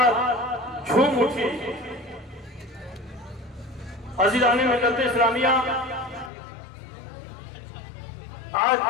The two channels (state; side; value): drops out; right; at 6.3 s